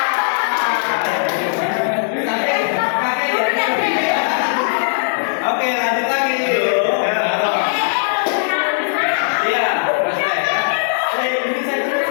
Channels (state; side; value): silent; right; digital silence